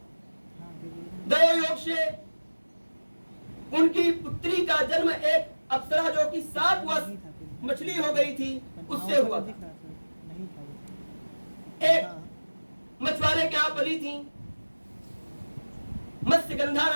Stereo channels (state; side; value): inverted; both; correlation -1.00